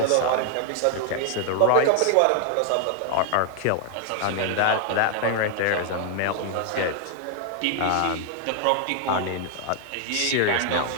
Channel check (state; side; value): different; both; correlation 0.00